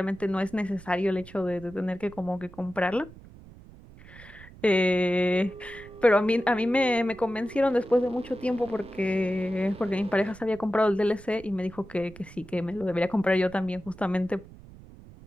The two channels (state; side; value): noise; right; rumble, 20 dB below the sound